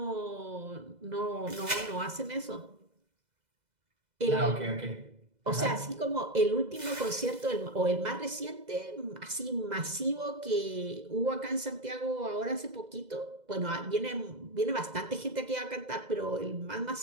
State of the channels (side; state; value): left; late; 2.0 ms